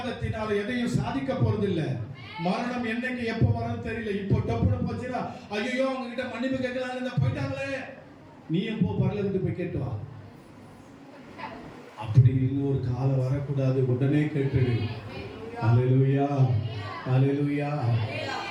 எதையும் சாதிக்க போறதில்லை. மரணம் என்னைக்கு எப்போ வரும் தெரியல. இப்போ டப்புனு போச்சுன்னா ஐயோ அவங்க கிட்ட மன்னிப்பு கேட்கலாம் போயிட்டாங்களே, நீ எப்போ பரலோகத்துக்கு போய் கேட்டு வா. அப்படி இன்னொரு காலம் வரக்கூடாது, உடனே கேட்டுடு. அல்லேலூயா அல்லேலூயா.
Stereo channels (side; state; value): both; identical; correlation 1.00